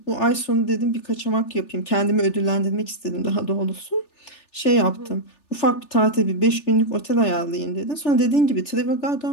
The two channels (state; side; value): late; right; 3.4 ms